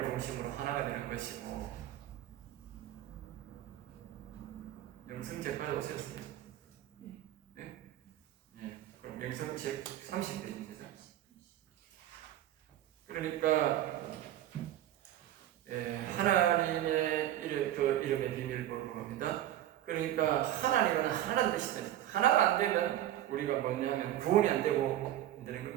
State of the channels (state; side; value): quieter; left; 12.8 dB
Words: 중심으로 하나가 되는 것이고, 영성책까지 오셨어요. 네? 네. 그럼 영성책 30페이지입니다. 그러니까 하나님의 이름의 비밀을 보는 겁니다. 그러니까 하나님은 하나라는 뜻이다. 하나가 안 되면 우리가 뭐냐면 구원이 안 되고 안 되는